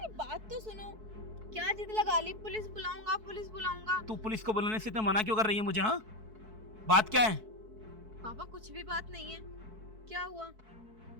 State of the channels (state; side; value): late; left; 4.6 ms